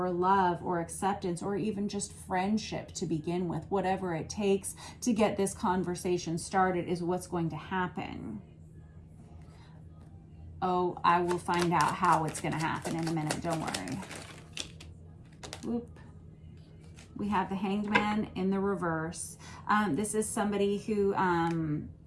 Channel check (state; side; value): identical; both; correlation 1.00